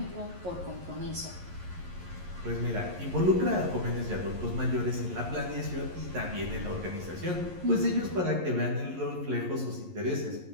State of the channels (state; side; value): late; left; 11 ms